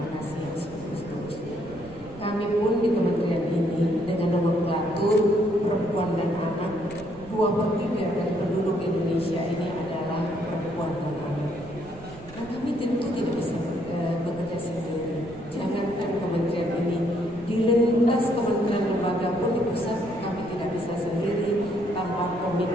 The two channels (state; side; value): noise; right; rumble, 18 dB below the sound